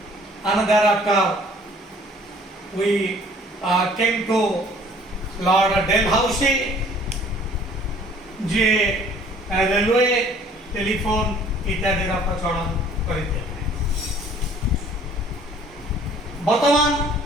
and thereafter we came to Lord Dalhousie, J railway telephone इत्यादि प्रचलन करते बर्तमान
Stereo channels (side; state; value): both; normal; correlation 0.54